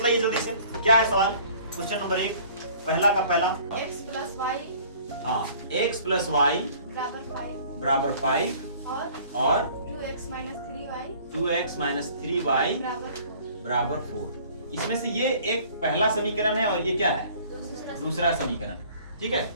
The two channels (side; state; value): both; inverted; correlation -0.52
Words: जल्दी से, क्या है सवाल। क्वेश्चन नंबर 1 पहला का पहला, x प्लस वाई, हाँ, x प्लस वाई बराबर 5 और 2x minus 3y 2x minus 3y बराबर 4। इसमें से ये एक पहला समीकरण है और ये क्या है, दूसरा समीकरण, ठीक है।